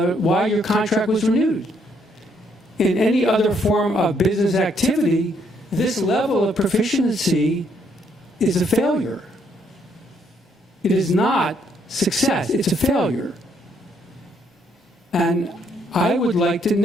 why your contract was renewed. In any other form of business activity, this level of proficiency is a failure. It is not success, it's a failure. And I would like to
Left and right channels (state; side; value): normal; both; correlation 0.71